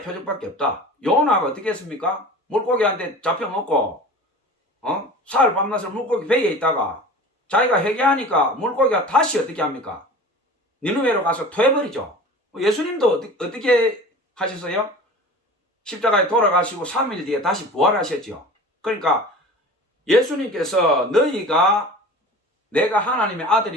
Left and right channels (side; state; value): both; normal; correlation 0.38